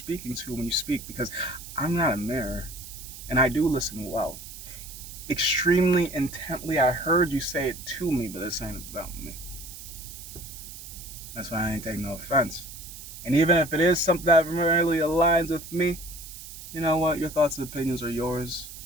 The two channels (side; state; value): right; noise; hiss, 13 dB below the sound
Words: to when you speak, because I'm not a mirror. And I do listen well. Extremely intently, I heard you say it to me, but this ain't about me. That's why I ain't taking no offense. And even if it is something that really aligns with me, you know what? Your thoughts and opinions are yours,